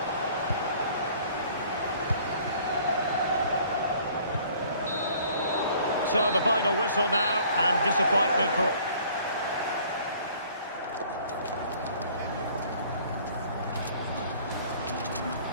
So the final whistle now, and disappointment for...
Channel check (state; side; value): inverted; both; correlation -0.55